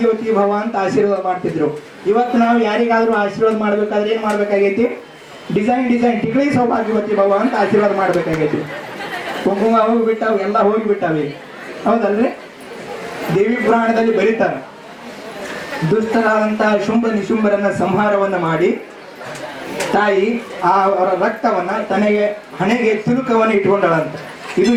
ಭವ ಅಂತ ಆಶೀರ್ವಾದ ಮಾಡ್ತಿದ್ರು. ಇವತ್ತು ನಾವು ಯಾರಿಗಾದ್ರೂ ಆಶೀರ್ವಾದ ಮಾಡ್ಬೇಕಾದ್ರೆ ಏನ್ ಮಾಡ್ಬೇಕಾಗೈತಿ? ಡಿಸೈನ್ ಟಿಕ್ಳಿ ಸೌಭಾಗ್ಯವತಿ ಭವ ಅಂತ ಆಶೀರ್ವಾದ ಮಾಡ್ಬೇಕಾಗೈತಿ. ಕುಂಕುಮ ಹೋಗಿಬಿಟ್ಟಾವ, ಎಲ್ಲ ಹೋಗಿಬಿಟ್ಟಾವೆ. ಹೌದಲ್ರಿ? ದೇವಿ ಪುರಾಣದಲ್ಲಿ ಬರೀತಾರೆ, ದುಷ್ಟರಾದಂತಹ ಶುಂಭ ನಿಶುಂಭರನ್ನ ಸಂಹಾರವನ್ನ ಮಾಡಿ ತಾಯಿ ಅವರ ರಕ್ತವನ್ನ ತನಗೆ ಹಣೆಗೆ ತಿಲುಕವನ್ನು ಇಟ್ಕೊಂಡಳಂತ. ಇದು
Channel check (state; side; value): identical; both; correlation 1.00